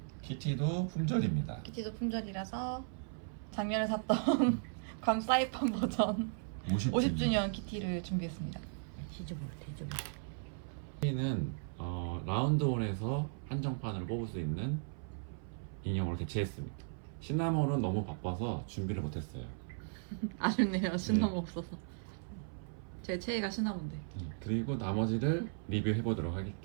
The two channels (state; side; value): silent; left; 53 dB below the other